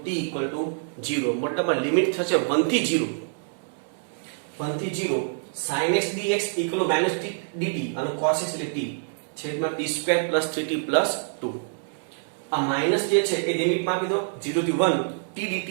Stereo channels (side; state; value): left; silent; 61 dB below the other